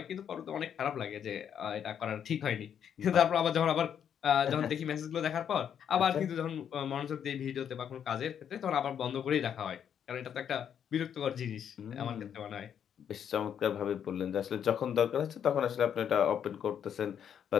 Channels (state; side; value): quieter; right; 8.6 dB